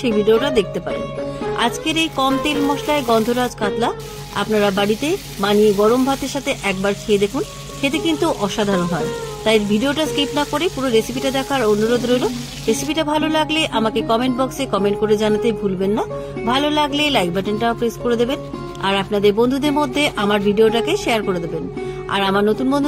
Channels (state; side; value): identical; both; correlation 1.00